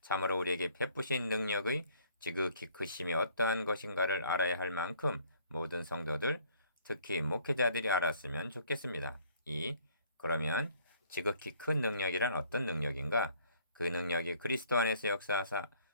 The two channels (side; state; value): both; inverted; correlation -0.59